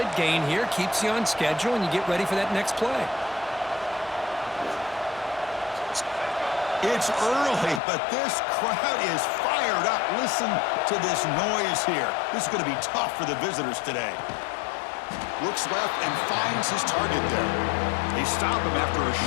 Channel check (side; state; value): right; drops out; at 7.8 s